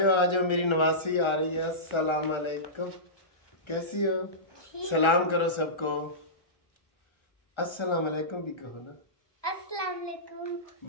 आ जाओ, मेरी नवासी आ रही है। अस्सलाम अलैकुम, कैसी हो? सलाम करो सबको। अस्सलाम अलैकुम भी कहो ना। अस्सलाम वालेकुम।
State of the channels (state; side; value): late; right; 1.3 ms